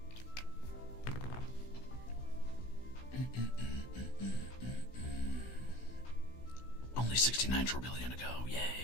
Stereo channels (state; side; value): late; right; 16 ms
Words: Only 69 trillion ago.